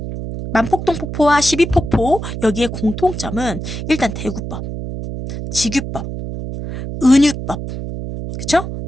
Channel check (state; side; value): noise; right; hum, 7 dB below the sound